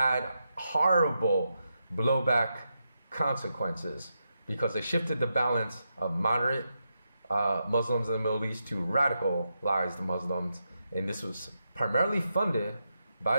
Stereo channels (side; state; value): both; inverted; correlation -0.86